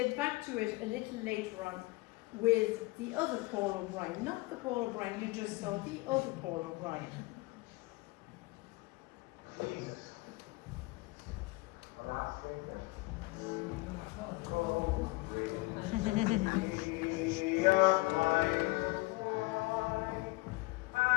back to it a little later on with the other Paul O'Brien, not the Paul O'Brien you just saw, the other Paul O'Brien.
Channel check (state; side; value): quieter; right; 22.8 dB